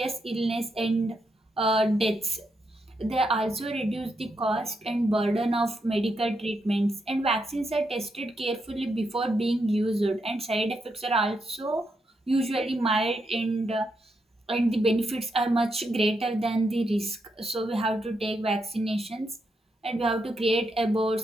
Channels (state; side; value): normal; both; correlation 0.82